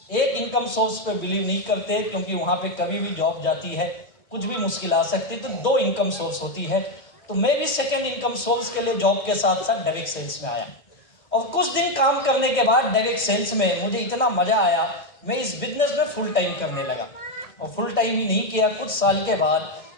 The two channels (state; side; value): late; right; 1.6 ms